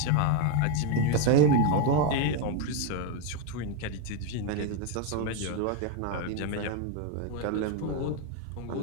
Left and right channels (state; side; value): different; both; correlation 0.01